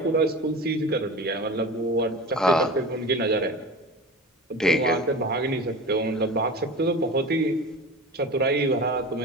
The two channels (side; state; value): both; normal; correlation 0.32